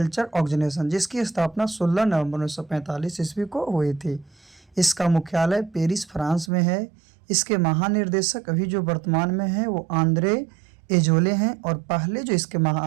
organisation, जिसकी स्थापना 16 नवंबर 1945 ईस्वी को हुई थी। इसका मुख्यालय पेरिस, फ्रांस में है। इसके महानिर्देशक अभी जो वर्तमान में हैं वो आंद्रे एजोले हैं, और पहले जो इसके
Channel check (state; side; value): drops out; left; at 6.5 s